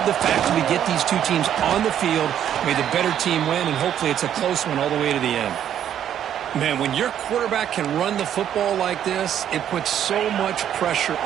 the fact that we get these two teams on the field. May the better team win, and hopefully it's a close one all the way to the end. Man, when your quarterback can run the football like this, it puts so much pressure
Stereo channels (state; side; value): quieter; left; 10.0 dB